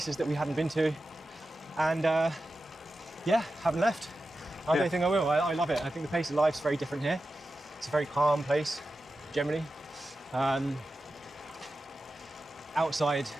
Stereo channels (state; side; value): normal; both; correlation 0.92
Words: that we hadn't been to, and haven't left. I don't think I will. I love it. I think the pace of life's very different here. It's a very calm place, generally. Outside